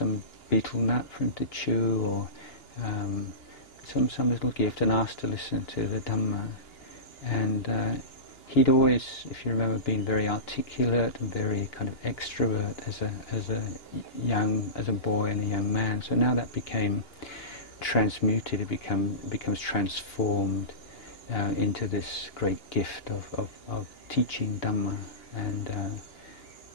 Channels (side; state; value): right; late; 2.9 ms